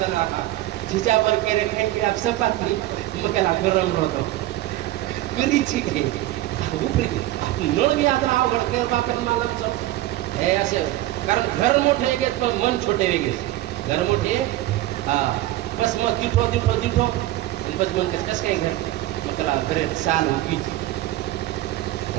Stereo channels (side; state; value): left; quieter; 15.6 dB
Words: राहा जिच्या पर केले काही की आप सपातली मग त्याला गरम होतो गरीची काही उपरी नळ बी आता अवघड केलं बापेर मला हे असे, कारण घर मोठे वेगळेच पण मन छोटे वेगळेच। घर मोठे बस मग दिठो दिठो दिठो आणि बस मन कसं काय घर मग त्याला घरे चाल उगीच